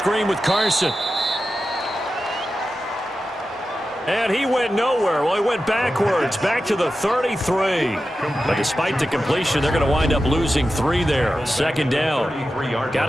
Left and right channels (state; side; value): normal; both; correlation 0.92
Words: with Carson. And he went nowhere. Well, he went backwards, back to the 33. But despite the completion, they're going to wind up losing 3 there. 2nd down. Got